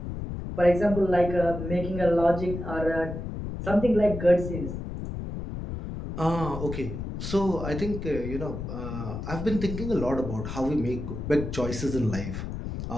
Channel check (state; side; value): noise; left; rumble, 6 dB below the sound